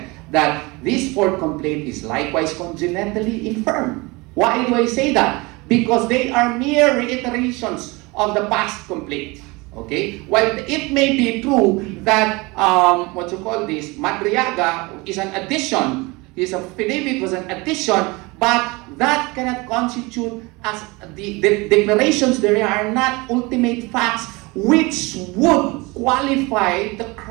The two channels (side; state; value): left; quieter; 24.9 dB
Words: that this fourth complaint is likewise congenitally infirm. Why do I say that? Because they are mere reiterations of the past complaint. Okay? While it may be true that, Madriaga is an addition, his affidavit was an addition, but that cannot constitute as the declarations there are not ultimate facts which would qualify the